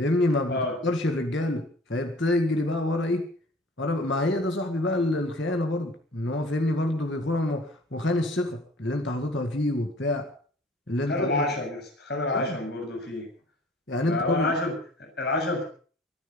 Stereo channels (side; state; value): both; normal; correlation 0.49